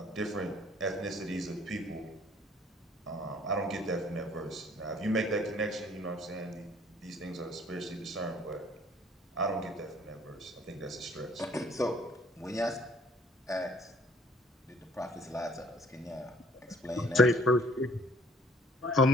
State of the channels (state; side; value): normal; both; correlation 0.58